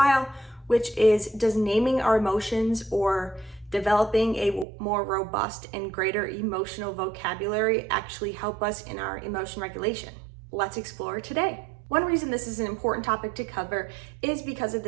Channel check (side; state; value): left; drops out; at 4.7 s